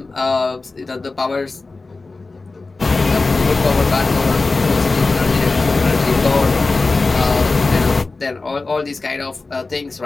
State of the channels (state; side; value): quieter; right; 3.7 dB